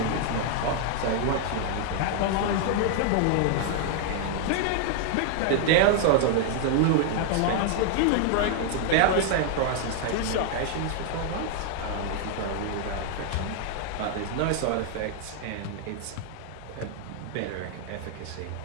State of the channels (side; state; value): both; different; correlation 0.00